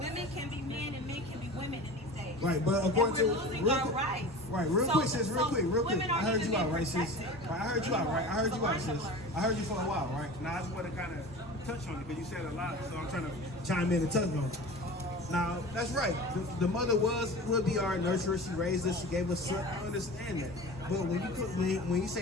can be men and men can be women in these days. Right, but according and we're to losing real our quick, rights. right, real So- quick, sis, real so quick, real quick. women I aren't heard even you out, being right, sis? protected. Right, I heard you out, right? I heard you So out, lines sis. are blurred. I heard you for a while, right? Now I just want to kind of touch on it because you said a lot, so I'm trying to chime in and touch on it. Now that's right. The mother would be our nurturer. She raised us. She gave us son. I understand that. But when you say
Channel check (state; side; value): normal; both; correlation 0.35